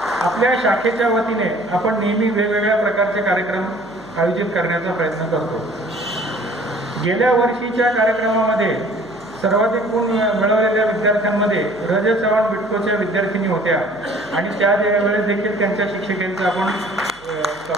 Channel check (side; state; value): left; noise; hum, 27 dB below the sound